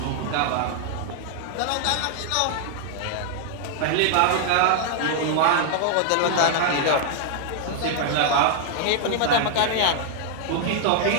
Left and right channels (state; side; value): different; both; correlation 0.00